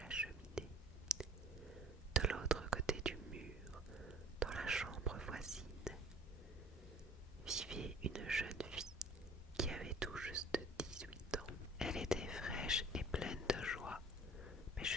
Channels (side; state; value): both; normal; correlation 0.48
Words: cheminée. De l'autre côté du mur, dans la chambre voisine, vivait une jeune fille qui avait tout juste 18 ans. Elle était fraîche et pleine de joie, mais